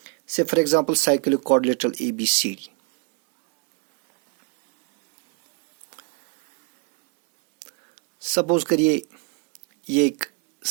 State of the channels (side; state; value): left; quieter; 32.3 dB